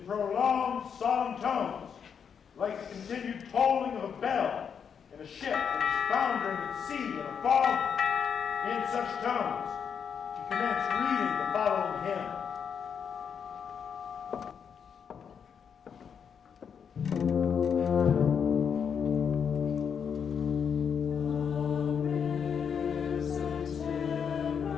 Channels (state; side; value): quieter; right; 7.2 dB